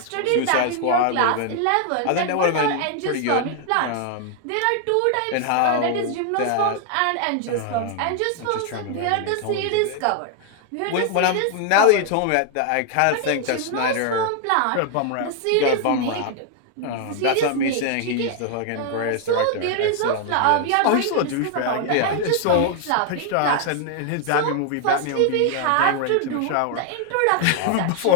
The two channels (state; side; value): different; both; correlation 0.00